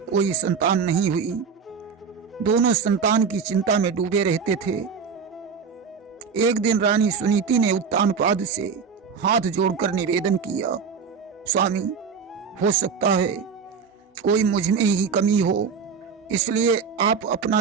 संतान नहीं हुई। दोनों संतान की चिंता में डूबे रहते थे। एक दिन रानी सुनीति ने उत्तानपाद से हाथ जोड़कर निवेदन किया, स्वामी, हो सकता है कोई मुझ में ही कमी हो, इसलिए आप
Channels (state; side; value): quieter; left; 5.9 dB